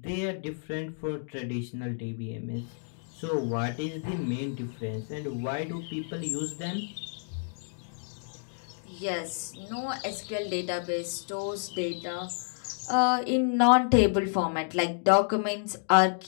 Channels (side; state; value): right; silent; digital silence